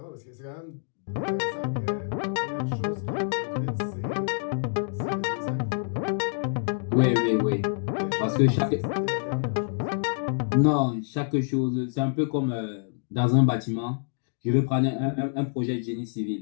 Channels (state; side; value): silent; right; digital silence